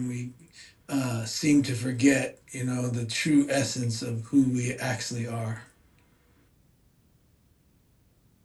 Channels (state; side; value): identical; both; correlation 1.00